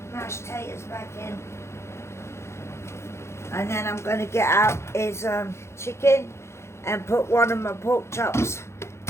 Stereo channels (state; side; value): late; right; 0.13 ms